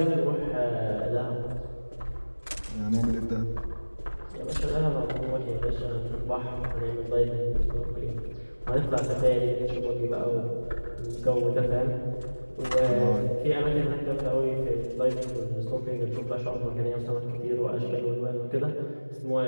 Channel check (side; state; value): both; inverted; correlation -1.00